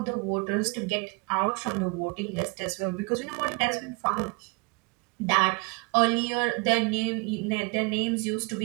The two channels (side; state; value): left; quieter; 30.1 dB